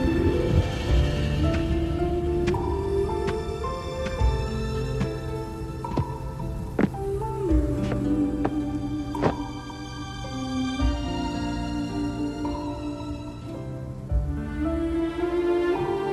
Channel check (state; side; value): identical; both; correlation 1.00